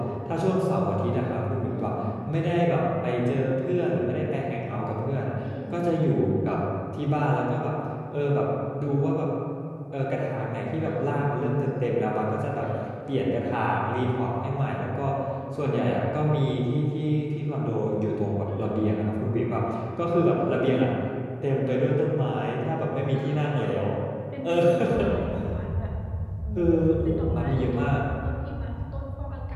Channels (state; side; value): identical; both; correlation 1.00